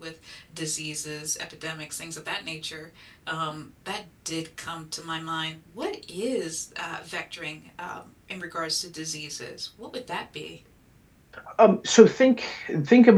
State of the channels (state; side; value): identical; both; correlation 1.00